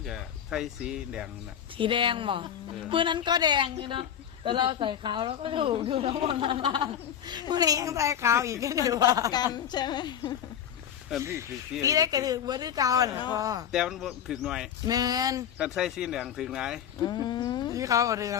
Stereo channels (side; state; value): right; quieter; 9.3 dB